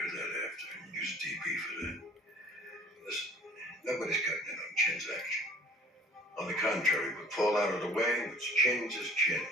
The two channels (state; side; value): normal; both; correlation 0.50